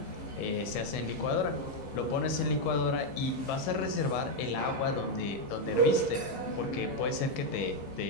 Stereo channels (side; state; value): right; late; 15 ms